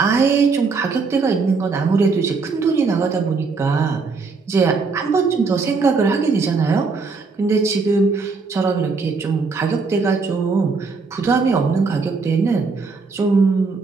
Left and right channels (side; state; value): left; quieter; 4.5 dB